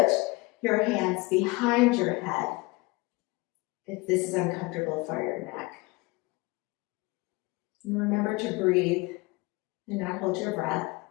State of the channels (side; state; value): right; quieter; 24.1 dB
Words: your hands behind your head if this is uncomfortable for your neck. And remember to breathe and not hold your breath.